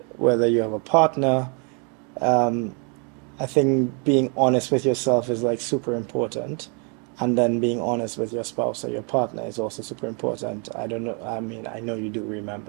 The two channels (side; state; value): left; quieter; 36.7 dB